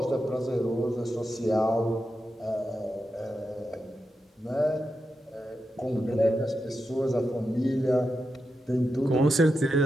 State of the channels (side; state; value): both; normal; correlation 0.88